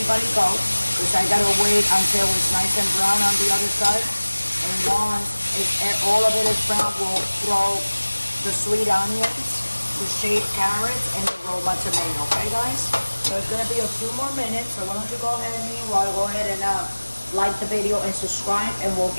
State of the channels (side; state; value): both; inverted; correlation -1.00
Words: go because I got to wait until it's nice and brown on the other side. And once all of it is brown, we'll throw the sweet onions, the shaved carrots, and the Roma tomato, okay guys? So it's going to be a few more minutes, so why don't you go ahead and meanwhile go ahead and like the video and subscribe, and we'll